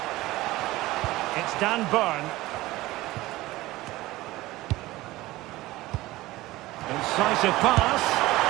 It's Dan Burn. Incisive pass.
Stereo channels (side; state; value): left; quieter; 18.2 dB